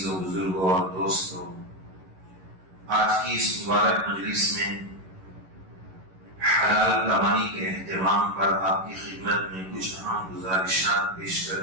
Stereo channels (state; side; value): late; left; 11 ms